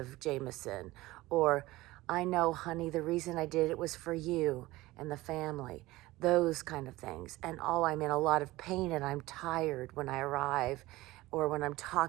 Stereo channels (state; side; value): quieter; left; 18.7 dB